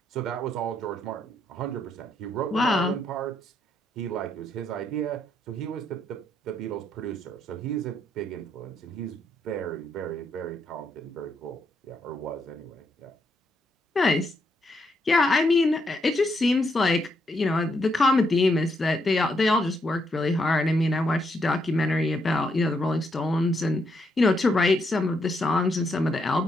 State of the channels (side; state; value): both; normal; correlation 0.77